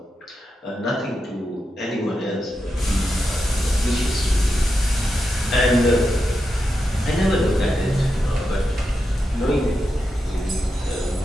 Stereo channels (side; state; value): both; normal; correlation 0.87